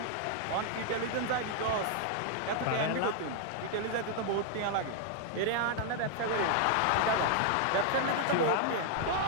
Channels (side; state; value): both; different; correlation 0.00